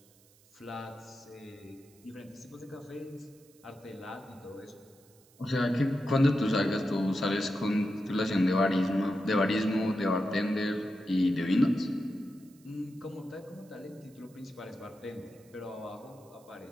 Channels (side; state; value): right; noise; hiss, 29 dB below the sound